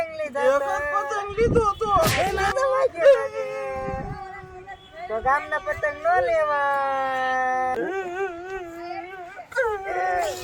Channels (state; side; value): identical; both; correlation 1.00